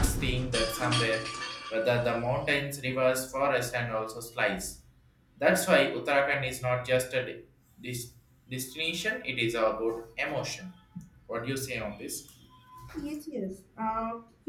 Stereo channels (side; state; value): both; identical; correlation 1.00